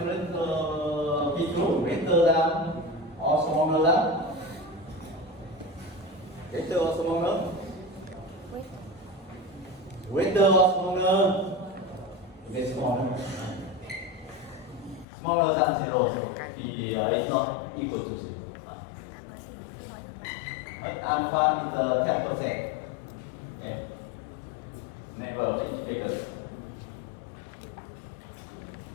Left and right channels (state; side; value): drops out; right; at 15.1 s